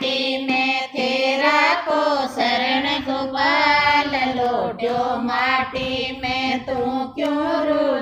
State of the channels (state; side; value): identical; both; correlation 1.00